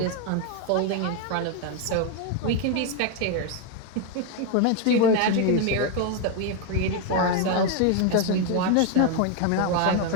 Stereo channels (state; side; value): different; both; correlation 0.01